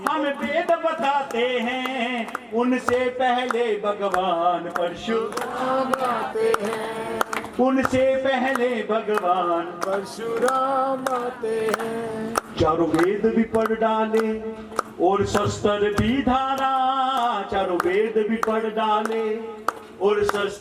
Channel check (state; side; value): identical; both; correlation 1.00